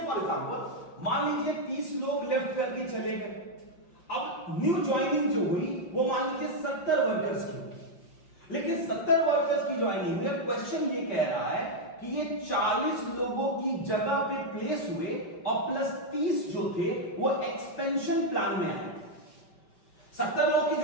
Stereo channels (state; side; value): late; right; 5.9 ms